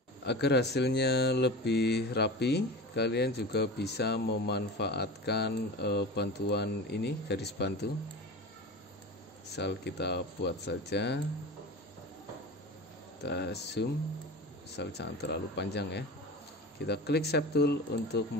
Agar hasilnya lebih rapi, kalian juga bisa memanfaatkan bantuan ini, garis bantu. Misal kita buat saja, kita zoom, misal jangan terlalu panjang ya. Kita klik shape tool untuk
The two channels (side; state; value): both; normal; correlation 0.31